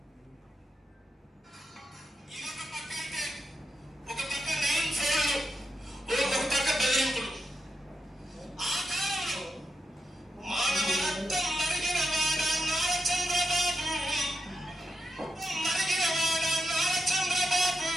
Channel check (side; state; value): both; normal; correlation 0.86